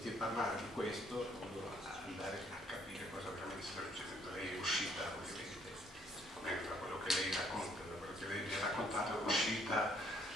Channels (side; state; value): both; normal; correlation 0.65